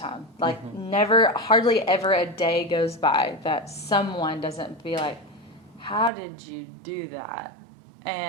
Like, hardly ever a day goes by that someone doesn't be like, how did you do that?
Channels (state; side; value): drops out; left; at 6.1 s